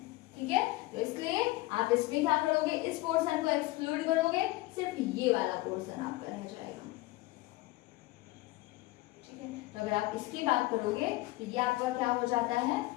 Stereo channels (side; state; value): right; quieter; 19.6 dB